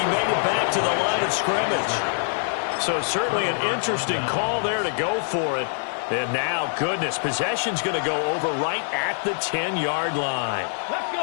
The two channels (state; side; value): silent; right; 55 dB below the other